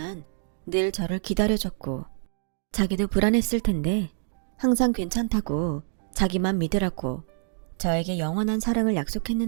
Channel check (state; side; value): silent; left; digital silence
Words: 늘 저를 기다려줬고 자기도 불안했을 텐데 항상 괜찮다고 자기만 믿으라고 저에게 영원한 사랑을